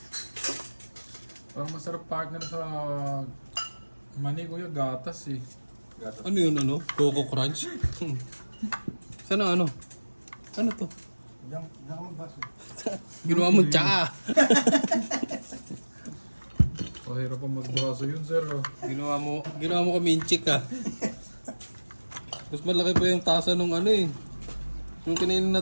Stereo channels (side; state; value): both; inverted; correlation -1.00